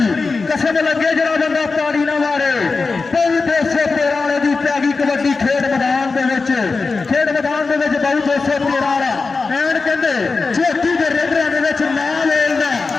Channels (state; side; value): quieter; right; 4.2 dB